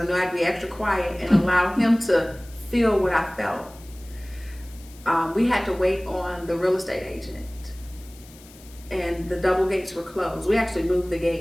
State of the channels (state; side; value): noise; left; hiss, 23 dB below the sound